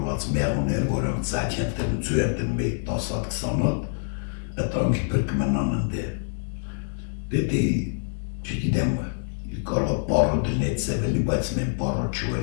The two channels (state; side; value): silent; right; digital silence